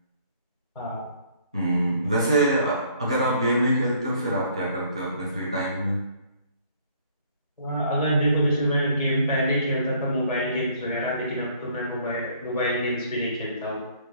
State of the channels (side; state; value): both; inverted; correlation -0.60